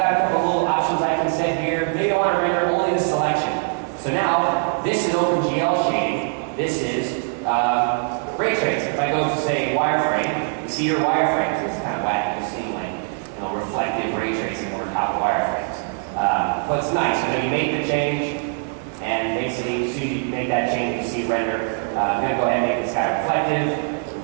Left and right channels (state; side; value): silent; left; 60 dB below the other